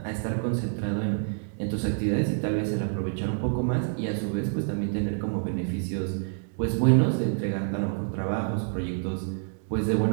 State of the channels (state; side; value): silent; left; digital silence